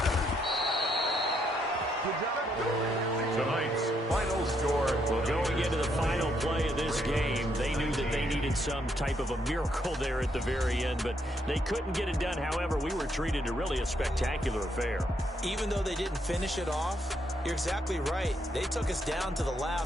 Tonight's final score. Well, going into the final play of this game, they knew that they needed some type of a miracle there at the very end, but they couldn't get it done. However, we were treated to really a spectacular affair. Even though they didn't finish it off, you're exactly right. They took us down to the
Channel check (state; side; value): normal; both; correlation 0.75